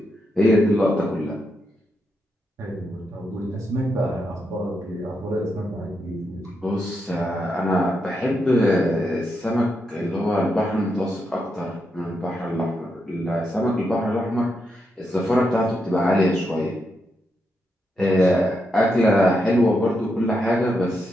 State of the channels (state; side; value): normal; both; correlation 0.83